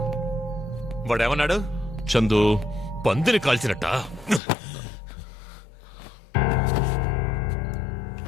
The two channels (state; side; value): drops out; right; at 4.4 s